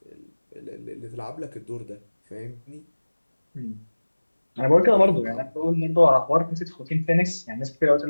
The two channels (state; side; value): inverted; both; correlation -1.00